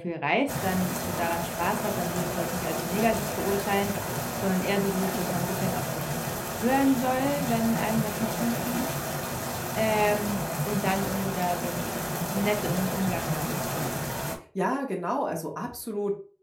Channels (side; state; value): both; identical; correlation 1.00